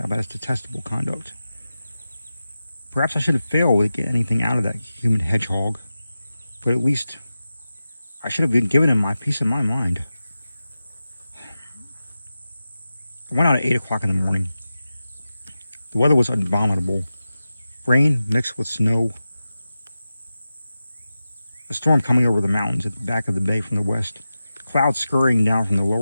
about his detestable conduct. Perhaps I should have failed to get anything out of that human hedgehog, but at least I should have given him my peace of my mind. I went out at 8 o'clock in the morning. The weather was abominable. Rain mixed with snow. A storm coming over the mountains at the back of the bay from the west. Clouds scurrying down from the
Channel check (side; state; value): both; inverted; correlation -0.94